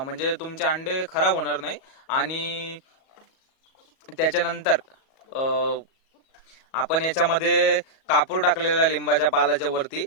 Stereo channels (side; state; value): right; late; 37 ms